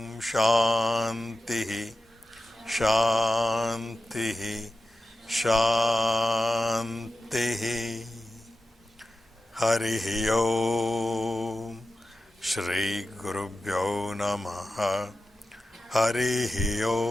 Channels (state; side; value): normal; both; correlation 0.93